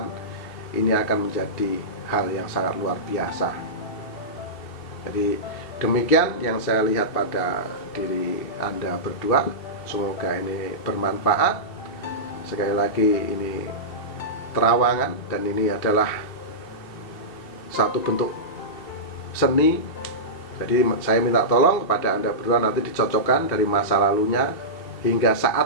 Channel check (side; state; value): right; late; 2.7 ms